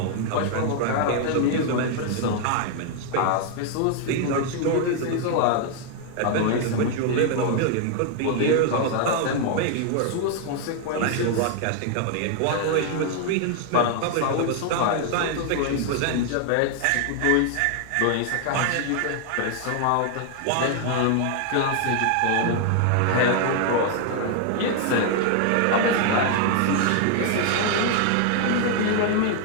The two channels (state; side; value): different; both; correlation 0.00